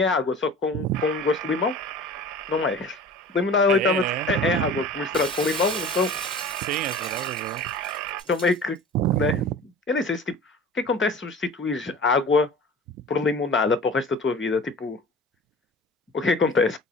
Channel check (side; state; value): both; normal; correlation 0.40